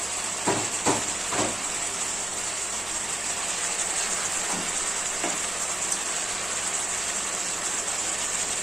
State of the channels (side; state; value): both; normal; correlation 0.97